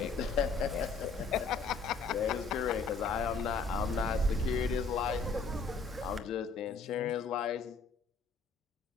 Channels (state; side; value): quieter; right; 4.4 dB